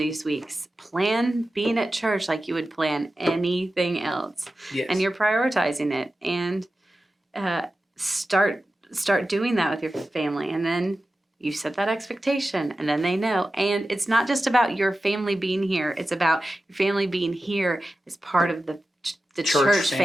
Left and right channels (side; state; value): both; normal; correlation 0.93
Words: weeks. Plan being at church like you would plan anything else. Yes. And you're prioritizing it. And start doing that with your family. And then you set that expectation, and then they know. And it's not just about your family being here. It's about your family being here as part of the church